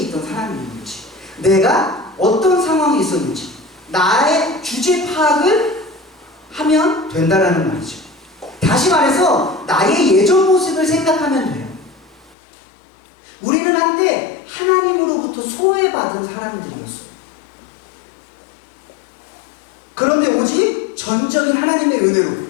있던 사람이었는지, 내가 어떤 상황에 있었는지, 나의 주제 파악을 하면 된다라는 말이죠. 다시 말해서 나의 예전 모습을 생각하면 돼요. 우리는 한때 하나님으로부터 소외받은 사람들이었어요. 그런데 오직 전적인 하나님의 은혜로,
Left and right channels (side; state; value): right; drops out; at 12.4 s